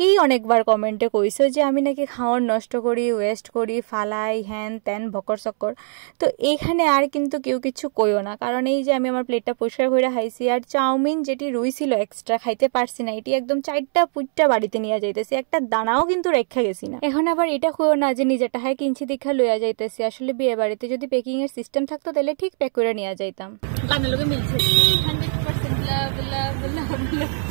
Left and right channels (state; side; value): silent; left; 64 dB below the other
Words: অনেকবার কমেন্টে কইছো যে আমি নাকি খাওয়ার নষ্ট করি, ওয়েস্ট করি, ফালাই, হ্যান ত্যান ভকর চক্কর। তো এইখানে আর কিন্তু কেউ কিছু কইও না, কারণ এই যে আমি আমার প্লেটটা পরিষ্কার করে খাইছি। আর চাউমিন যেটি রইছিল এক্সট্রা খাইতে পারছি না, এটি একদম 4টা পুইটটা বাড়িতে নিয়ে যাইতেছি, একটা দানাও কিন্তু রেখা গেছি না। এখন আবার এটা কইও না যে নিজের টাকায় কিনছি দেখা লইয়া যাইতেছি। আসলে বিয়ে বাড়িতে যদি প্যাকিং এর সিস্টেম থাকতো তাহলে ঠিক প্যাক করে নিয়ে যাইতাম। গানের লোকে মিলছে 100% লাভ লাভ লাভ।